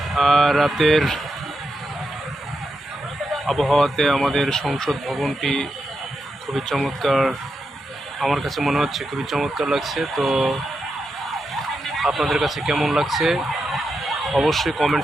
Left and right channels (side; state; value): both; normal; correlation 0.86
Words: রাতের আবহাওয়াতে আমাদের সংসদ ভবনটি খুবই চমৎকার, আমার কাছে মনে হচ্ছে খুবই চমৎকার লাগছে। তো আপনাদের কাছে কেমন লাগছে অবশ্যই